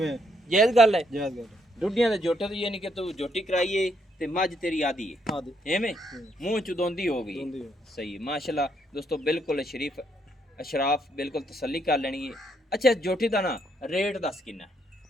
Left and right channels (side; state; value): both; normal; correlation 0.73